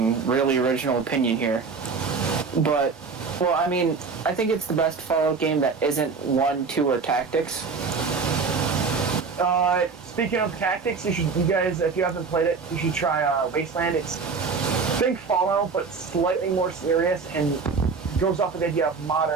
really original opinion here. But, well, I mean, I think it's the best Fallout game that isn't 1, 2, or tactics. Speaking of tactics, you guys, if you haven't played it, you should try Wasteland. It's think Fallout, but slightly more serious, and goes off of the idea of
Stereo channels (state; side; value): quieter; left; 5.0 dB